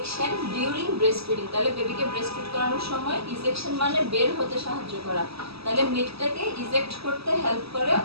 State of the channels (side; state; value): left; late; 0.77 ms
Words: during breast feeding. তাহলে বেবিকে ব্রেস্ট ফিড করানোর সময় ইজেকশন মানে বের হতে সাহায্য করা, তাহলে মিল্কটাকে ইজেক্ট করতে হেল্প করে